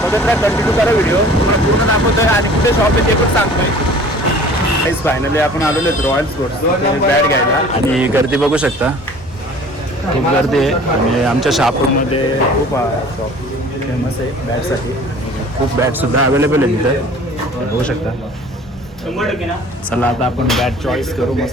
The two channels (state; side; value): normal; both; correlation 0.47